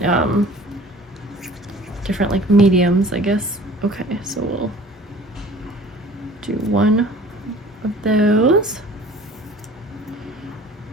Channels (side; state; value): both; normal; correlation 0.47